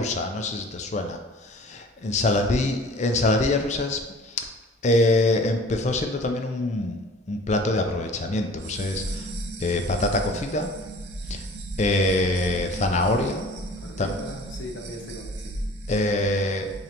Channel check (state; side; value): normal; both; correlation 0.46